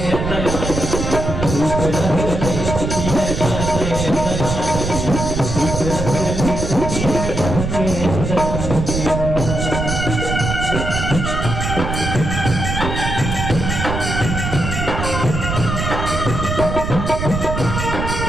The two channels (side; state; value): right; noise; rumble, 3 dB below the sound